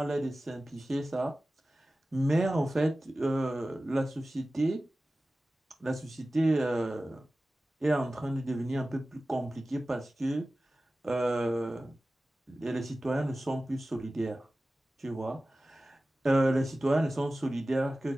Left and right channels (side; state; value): both; normal; correlation 0.96